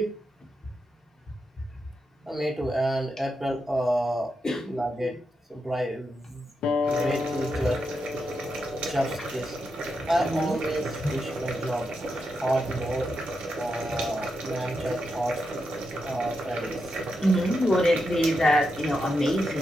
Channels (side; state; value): both; normal; correlation 0.85